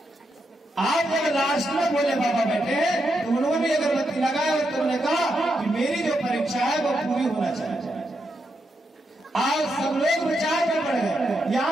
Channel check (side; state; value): both; normal; correlation 0.83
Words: आप जब लास्ट में बोले बाबा बैठे तो उन्होंने अगरबत्ती लगाया और तुमने कहा कि मेरी जो परीक्षा है वो पूरी होना चाहिए। आज सब लोग विचार में पड़ गए।